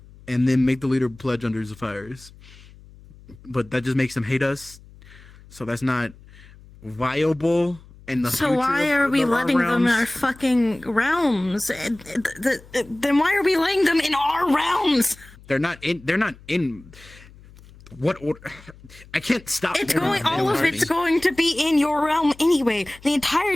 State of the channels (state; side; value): noise; left; hum, 22 dB below the sound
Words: and then make the leader pledge under the fires. But that just makes them hate us, so that's not viable. In the So future why of are we our letting them in realms. our fucking realms? Then why are we letting them in our realms? They're not in. What order? I can't stop. It's them going. from All of doing it's things. going to be in your realm anyway. The